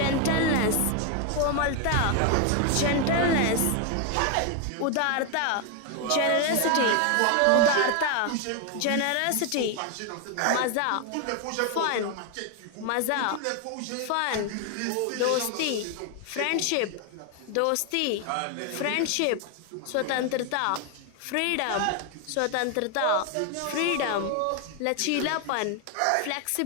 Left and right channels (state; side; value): different; both; correlation 0.01